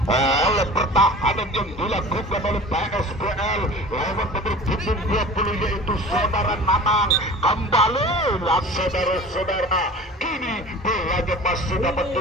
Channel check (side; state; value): both; normal; correlation 0.40